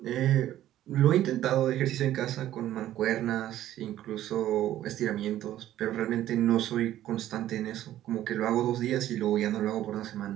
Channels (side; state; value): left; quieter; 13.0 dB